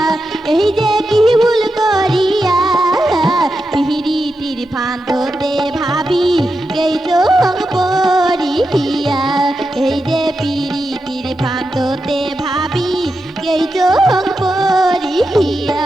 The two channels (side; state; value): both; normal; correlation 0.88